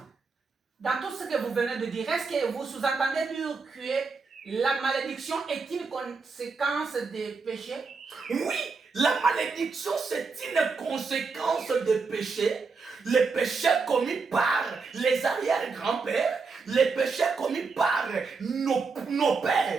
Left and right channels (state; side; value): quieter; left; 4.6 dB